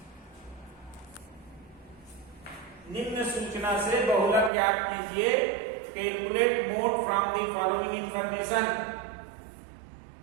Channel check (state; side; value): drops out; left; at 4.5 s